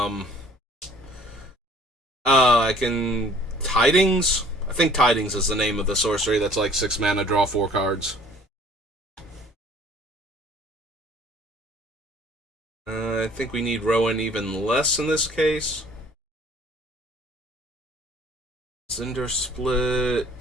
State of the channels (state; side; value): normal; both; correlation 0.53